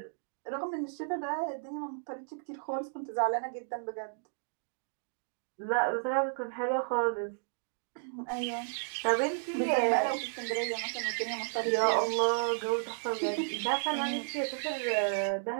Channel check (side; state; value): left; silent; digital silence